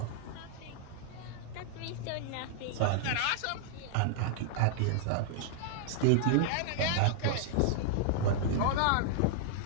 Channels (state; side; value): different; both; correlation -0.01